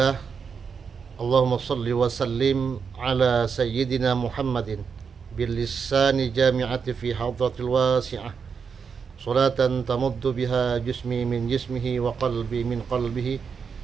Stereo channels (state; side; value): quieter; left; 6.1 dB